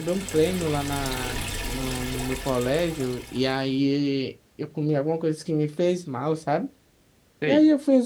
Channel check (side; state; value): both; identical; correlation 1.00